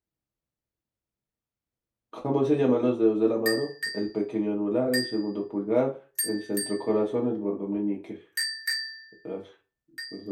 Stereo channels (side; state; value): both; identical; correlation 1.00